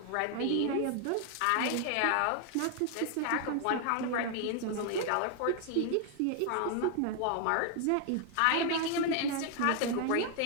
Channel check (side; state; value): both; different; correlation 0.00